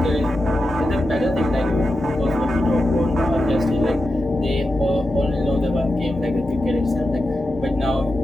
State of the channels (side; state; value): both; normal; correlation 0.90